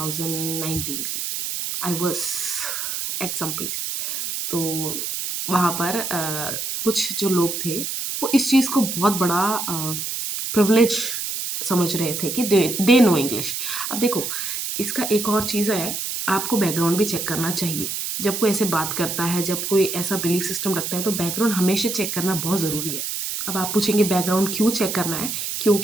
की। I was at some place. तो वहाँ पर कुछ जो लोग थे, वो इस चीज़ को बहुत बड़ा प्रिविलेज समझ रहे थे कि दे नो इंग्लिश। अब देखो, इसका एक और चीज़ है, आपको बैकग्राउंड भी चेक करना चाहिए। जब कोई ऐसे बात करता है, जब कोई ऐसा बिलीफ सिस्टम रखता है, तो बैकग्राउंड हमेशा चेक करना बहुत ज़रूरी है। अब आप पूछेंगे बैकग्राउंड क्यों चेक करना है?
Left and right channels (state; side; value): noise; right; hiss, 3 dB below the sound